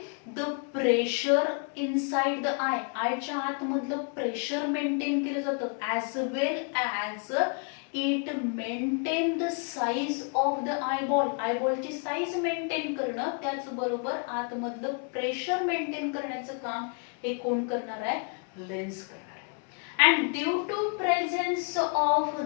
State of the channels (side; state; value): right; quieter; 39.5 dB